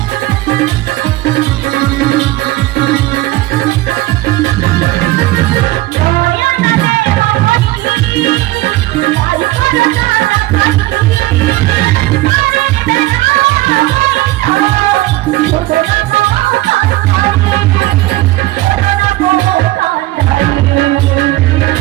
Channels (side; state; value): left; quieter; 18.1 dB